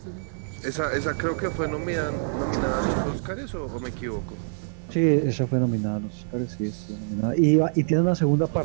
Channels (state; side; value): silent; left; 61 dB below the other